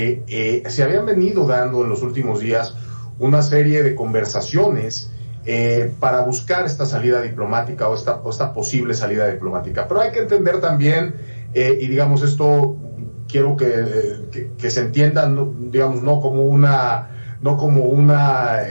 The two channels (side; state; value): both; inverted; correlation -1.00